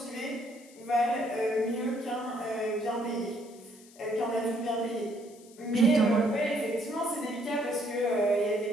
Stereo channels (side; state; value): left; noise; hiss, 24 dB below the sound